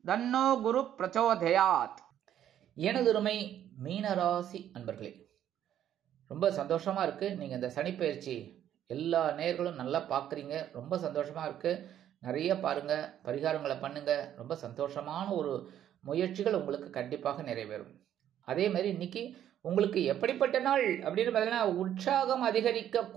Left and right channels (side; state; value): left; quieter; 10.8 dB